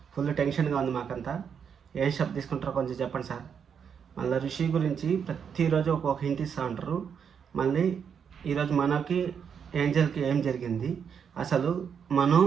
ఫుల్ టెన్షన్గా ఉంది మాకంతా. ఏం స్టెప్ తీసుకుంటారో కొంచెం చెప్పండి సార్. మళ్ళీ ఋషి గురించి ప్రతిరోజు ఒక్కొక్క హింట్ ఇస్తూ ఉంటారు. మళ్ళీ ఈరోజు మనకి ఏంజల్కి ఏం జరిగింది, అసలు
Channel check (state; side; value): quieter; left; 7.2 dB